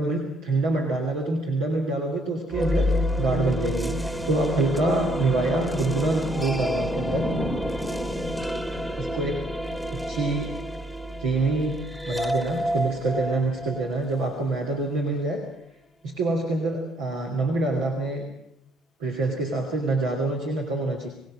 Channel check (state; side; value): normal; both; correlation 0.68